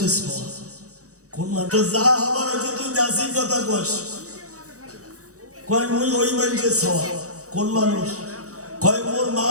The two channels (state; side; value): late; left; 0.65 ms